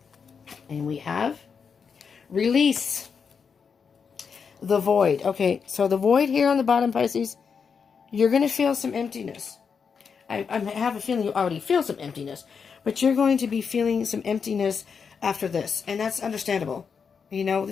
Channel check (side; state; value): right; quieter; 6.1 dB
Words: And we have release. The void. Okay, so the void here on the bottom, Pisces, you're going to feel some emptiness. I have a feeling you already feel some emptiness, but you're going to be feeling some emptiness after this, and that's understandable. You know,